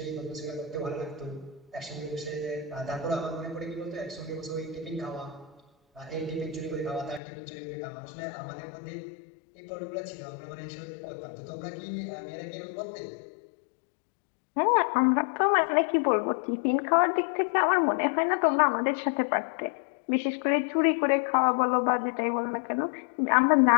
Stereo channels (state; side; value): drops out; right; at 7.2 s